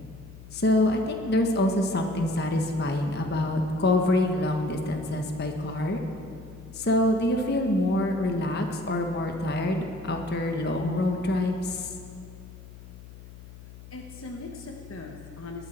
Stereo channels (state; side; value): noise; left; hum, 17 dB below the sound